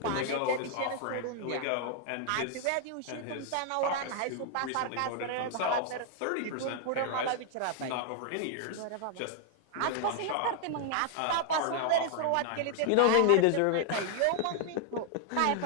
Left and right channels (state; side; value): different; both; correlation 0.00